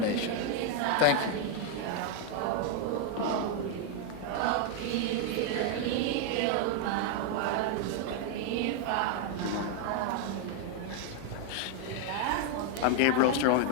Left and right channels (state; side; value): different; both; correlation 0.01